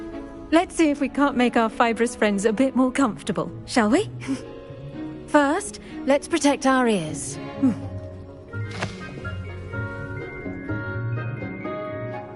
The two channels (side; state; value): both; identical; correlation 1.00